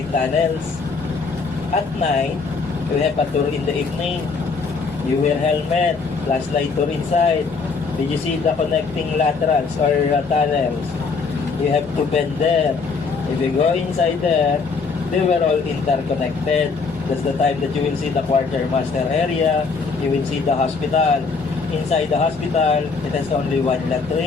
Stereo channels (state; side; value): quieter; right; 4.7 dB